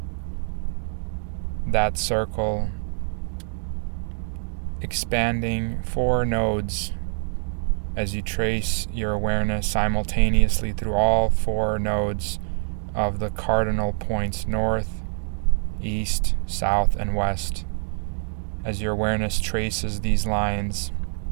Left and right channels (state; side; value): silent; left; digital silence